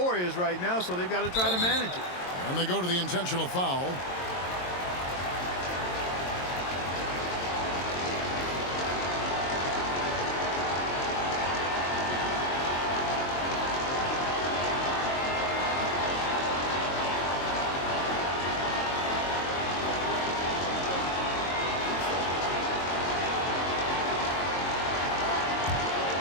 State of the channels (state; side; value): late; right; 22 ms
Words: is right now, so they've got to try to manage it. And they go to the intentional foul.